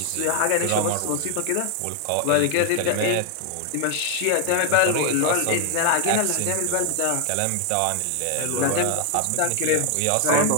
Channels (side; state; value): both; different; correlation 0.00